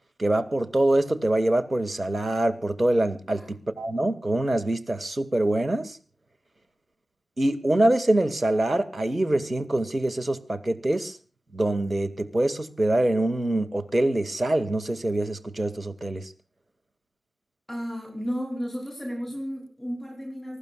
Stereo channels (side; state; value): both; normal; correlation 0.96